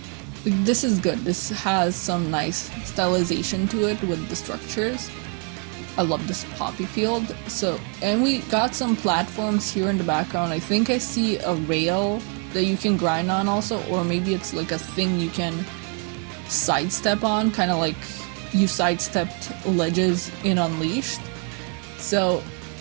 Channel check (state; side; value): quieter; left; 39.2 dB